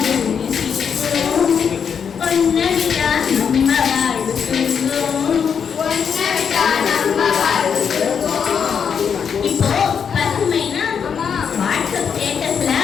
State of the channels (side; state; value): right; quieter; 7.0 dB